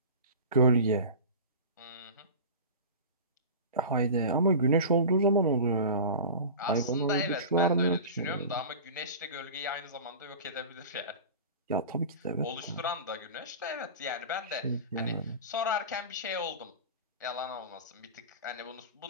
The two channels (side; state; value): both; inverted; correlation -0.33